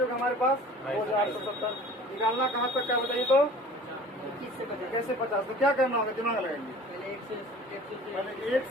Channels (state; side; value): normal; both; correlation 0.45